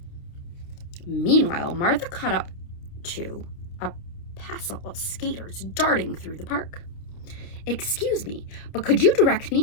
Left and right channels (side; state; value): right; late; 29 ms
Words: Meanwhile, Martha caught up to a passel of skaters darting through the park. "Excuse me, but could you direct me